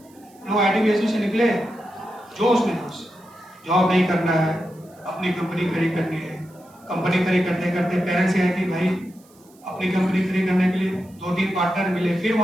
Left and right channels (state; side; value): noise; right; hiss, 29 dB below the sound